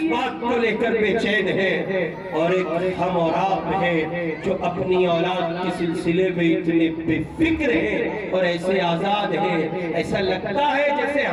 بات کو لے کر بے چین ہے, اور ایک ہم اور آپ ہیں جو اپنی اولاد کے سلسلے میں اتنے بے فکر ہے اور ایسے آزاد ہے. ایسا لگتا ہے جیسے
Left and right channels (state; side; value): identical; both; correlation 1.00